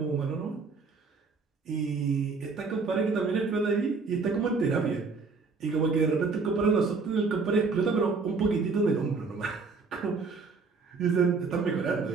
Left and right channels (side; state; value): left; quieter; 4.4 dB